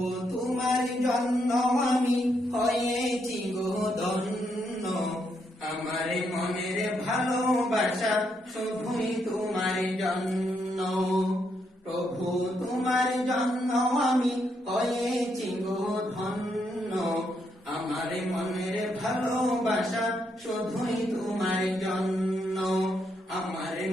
তোমার জন্য আমি হয়েছি গো ধন্য, আমার মনের ভালোবাসা শুধুই তোমার জন্য। প্রভু তোমার জন্য আমি হয়েছি গো ধন্য, আমার মনের ভালোবাসা শুধুই তোমার জন্য, আমার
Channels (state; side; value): normal; both; correlation 0.78